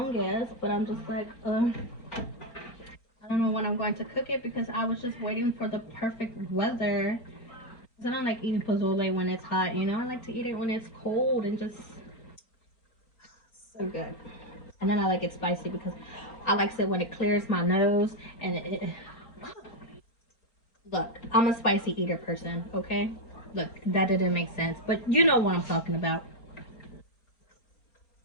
but I'm just like, I I don't know when I'm going to cook it because I was just waiting for the perfect weather. I don't like eating pozole when it's hot, you know? I like to eat it when it's cold and just so good. And then I like it spicy because I like it when it clears my nose and look, I'm a spicy eater person, okay? Look, that didn't make sense, but you know what I'm talking about.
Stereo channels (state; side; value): late; right; 4.2 ms